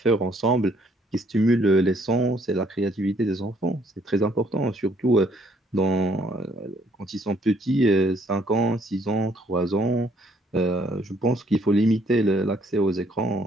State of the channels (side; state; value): both; normal; correlation 0.65